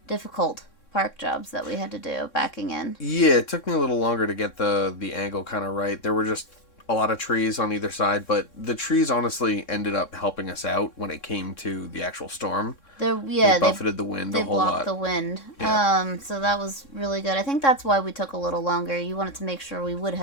difficult park jobs that we had to do, backing in. Yeah, it took me a little longer to get the angle kind of right. There were just a lot of trees on either side, but the trees honestly ended up helping us out when it came to the actual storm. They buffeted the wind a whole lot. They blocked the wind. Yeah. So that was really good. I think that's why we took a little longer. You wanted to make sure we would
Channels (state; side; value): late; right; 3.6 ms